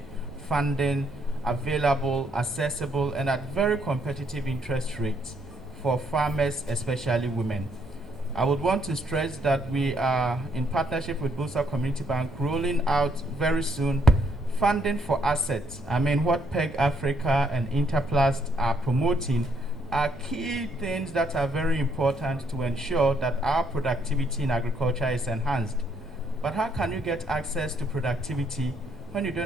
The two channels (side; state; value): both; normal; correlation 0.71